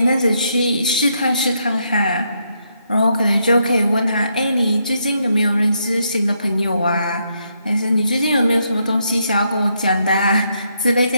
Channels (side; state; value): both; inverted; correlation -0.78